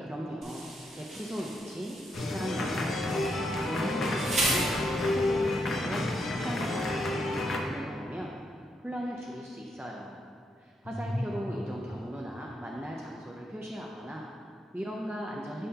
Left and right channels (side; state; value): both; normal; correlation 0.79